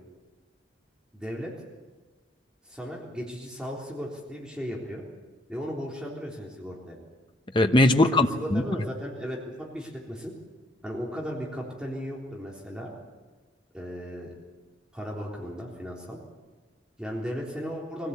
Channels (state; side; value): normal; both; correlation 0.69